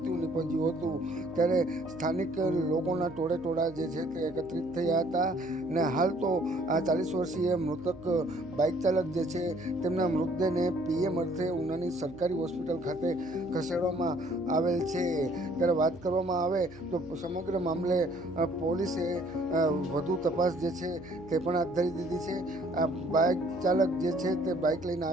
નીપજ્યું હતું. ત્યારે સ્થાનિક લોકોના ટોળે જે છે તે એકત્રિત થયા હતા અને હાલ તો આ 40 વર્ષીય મૃતક બાઇક ચાલક જે છે તેમના મૃતદેહને પીએમ અર્થે ઉનાની સરકારી હોસ્પિટલ ખાતે ખસેડવામાં આવેલ છે. ત્યારે વાત કરવામાં આવે તો સમગ્ર મામલે પોલીસે વધુ તપાસ જે છે તે પણ હાથ ધરી દીધી છે. આ બાઇક ચાલક જે છે તે બાઇક લઈને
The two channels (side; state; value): right; noise; hum, 21 dB below the sound